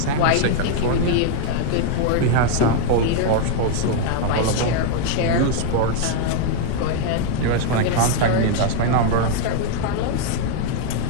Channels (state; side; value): different; both; correlation 0.00